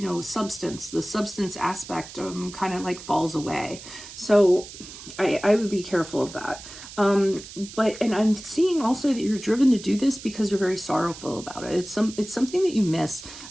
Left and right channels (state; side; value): noise; right; hiss, 14 dB below the sound